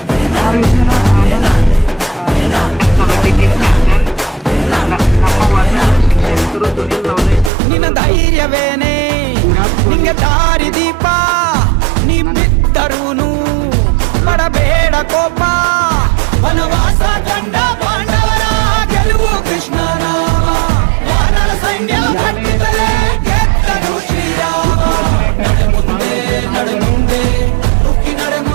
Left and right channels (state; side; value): drops out; left; at 7.5 s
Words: ನಿನ್ನ ಧೈರ್ಯವೇನೆ ನಿಂಗೆ ದಾರಿ ದೀಪ, ನೀ ಬಿದ್ದರೂನು ಪಡಬೇಡ ಕೋಪ. ವನವಾಸ ಕಂಡ ಪಾಂಡವರ ಗೆಲುವು ಕೃಷ್ಣ ನಾಮ, ವಾನರ ಸೈನ್ಯ ಕಟ್ಟಿದರೆ ಗೆದ್ದನು ಶ್ರೀರಾಮ. ನಡೆ ಮುಂದೆ ನಡೆ ಮುಂದೆ ನುಗ್ಗಿ ನಡೆ